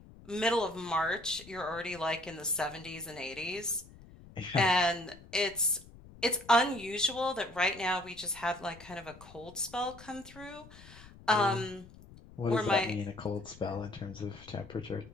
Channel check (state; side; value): noise; left; rumble, 20 dB below the sound